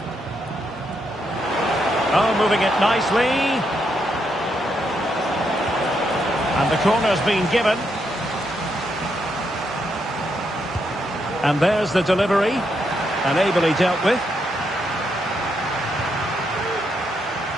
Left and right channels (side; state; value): both; normal; correlation 0.79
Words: Oh, moving it nicely. And the corner's been given. And there's the delivery. And ably dealt with.